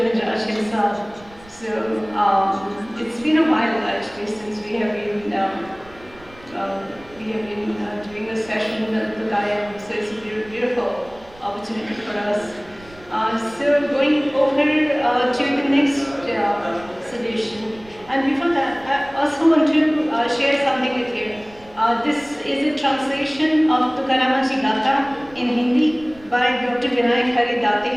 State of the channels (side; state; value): right; noise; rumble, 24 dB below the sound